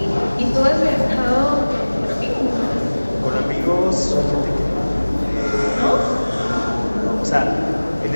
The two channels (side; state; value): both; inverted; correlation -1.00